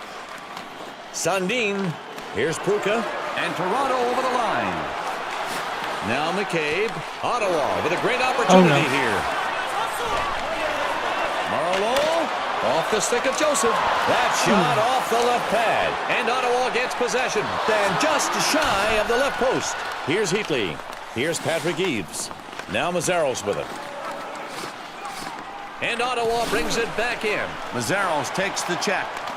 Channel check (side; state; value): both; identical; correlation 1.00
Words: Sundin. Here's Pruka. And Toronto over the line. Now McCabe. Ottawa with a great opportunity here. Marlowe off the stick of Joseph. That shot off the left pad. And Ottawa gets possession. Then just shy of the left post. Here's Heatley. Here's Patrick Eaves. Now Mazzaros with it. And Ottawa brings it back in. Mazzaros takes the check.